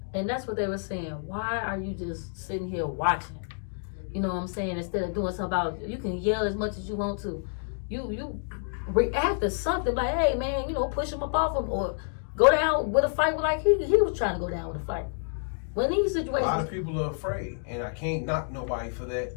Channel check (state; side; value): silent; right; digital silence